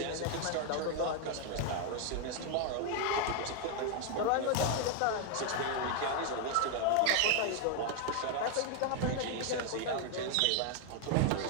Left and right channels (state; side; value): different; both; correlation 0.01